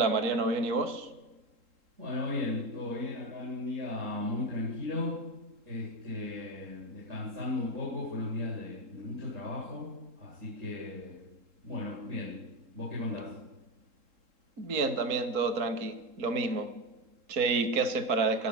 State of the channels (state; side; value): late; left; 3.7 ms